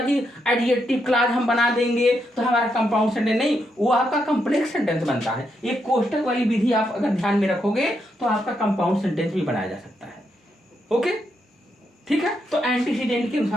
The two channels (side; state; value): both; normal; correlation 0.80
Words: कि एडजेक्टिव क्लॉज हम बना देंगे तो हमारा कंपाउंड सेंटेंस नहीं, वो आपका कॉम्प्लेक्स सेंटेंस बनता है। ये कोष्टक वाली विधि आप अगर ध्यान में रखोगे तो आपका कंपाउंड सेंटेंस भी बनाया जा सकता है। ओके, ठीक है। तो एंटीसीडेंट के